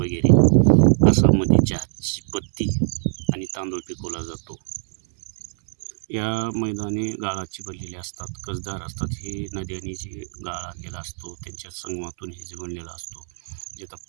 आसाममध्ये चहाची पत्ती आणि तांदूळ पिकवला जातो. या मैदाने गाळाची बनलेली असतात, कसदार असतात. हे नद्यांनी जे गाळ आणलेला असतो त्यांच्या संगमातून हे जे बनलेला असतो. जे आता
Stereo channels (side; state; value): left; silent; 63 dB below the other